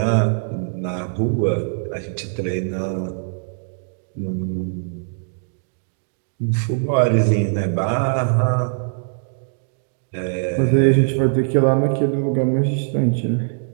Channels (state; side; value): silent; left; digital silence